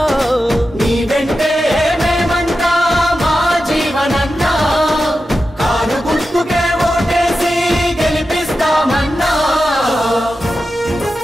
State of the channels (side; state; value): both; normal; correlation 0.91